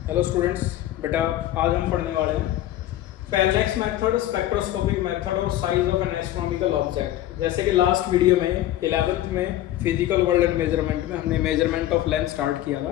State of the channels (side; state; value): right; quieter; 13.6 dB